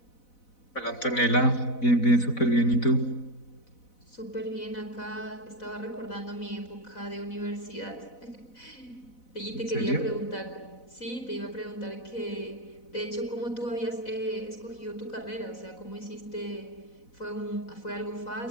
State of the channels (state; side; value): late; right; 4.0 ms